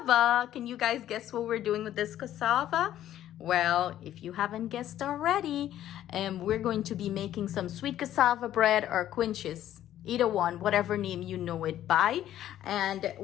Can you guys guess what we're doing with this cassava? Well, if you haven't guessed already, we're going to be making some sweet cassava bread or quinches. Either one, whatever name you know it by. And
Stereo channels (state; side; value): quieter; right; 12.1 dB